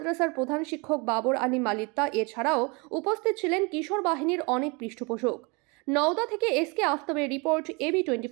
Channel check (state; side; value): quieter; left; 29.2 dB